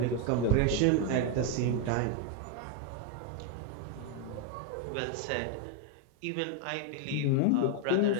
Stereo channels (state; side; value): different; both; correlation 0.01